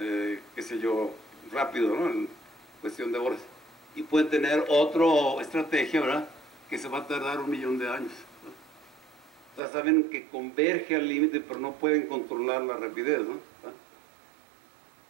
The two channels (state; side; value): drops out; left; at 9.6 s